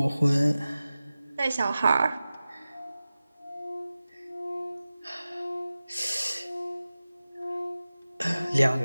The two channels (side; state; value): both; inverted; correlation -0.95